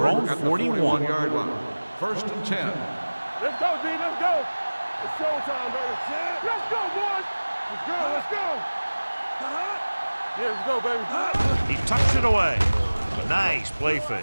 over own at the 41-yard line. 1st and 10. Let's go, D. Let's go. It's showtime, baby. Let's go, boys. Let's go. Let's go. Yeah, let's go, baby. He tucks it away. Nice play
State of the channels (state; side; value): inverted; both; correlation -1.00